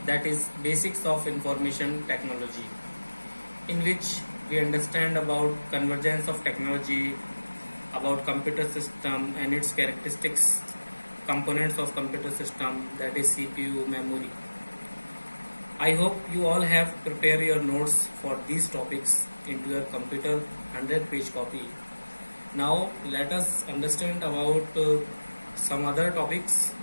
that is basics of information technology, in which we understand about convergence of technology, about computer system and its characteristics, components of computer system, that is CPU, memory. I hope you all have prepared your notes for these topics into your computer 100-page copy. Now let us understand about some other topics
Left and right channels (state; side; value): inverted; both; correlation -1.00